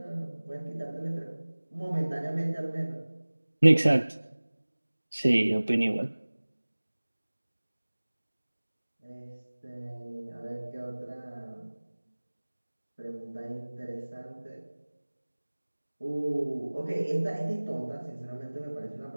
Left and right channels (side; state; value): both; inverted; correlation -1.00